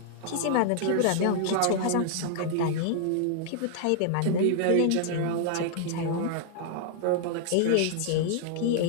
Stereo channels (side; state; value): both; different; correlation 0.00